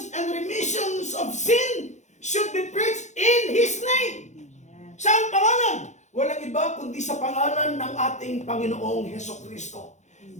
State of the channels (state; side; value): late; right; 0.34 ms